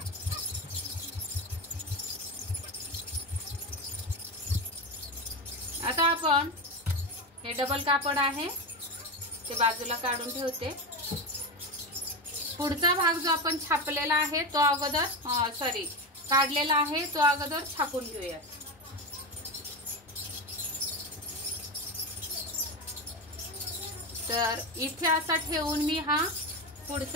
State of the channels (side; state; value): both; normal; correlation 0.18